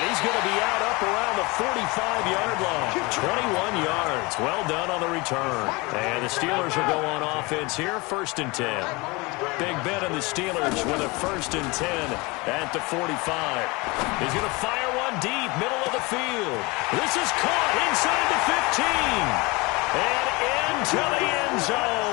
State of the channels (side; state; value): right; quieter; 25.2 dB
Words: he's going to be out up around the 45-yard line. 21 yards. Well done on the return. And the Steelers will go on offense here, 1st and 10. Big Ben and the Steelers with a 1st and 10 at the 45. He's going to fire one deep, middle of the field. This is caught inside the 15. And into the end